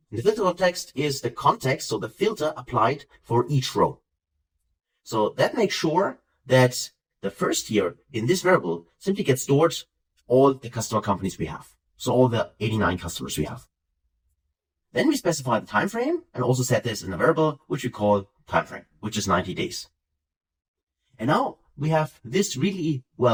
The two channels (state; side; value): identical; both; correlation 1.00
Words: And the filter context is the context, so the filter applied for each row. So that makes sure that the first year in this variable simply gets stored all the customer companies we have. So all the 89 customers we have. Then we specify the time frame and also set this in a variable which we call time frame, which is 90 days. And now we have this really,